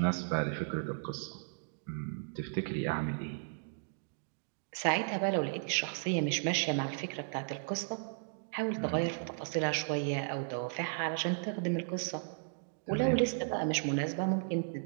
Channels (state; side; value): silent; left; digital silence